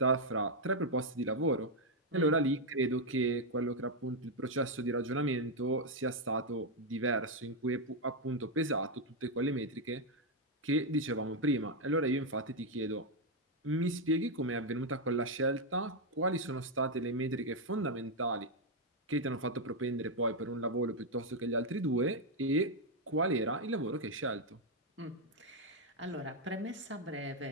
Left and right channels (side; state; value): both; normal; correlation 0.01